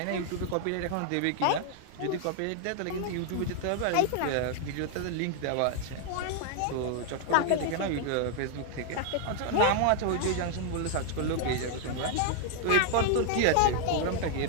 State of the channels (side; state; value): both; different; correlation 0.00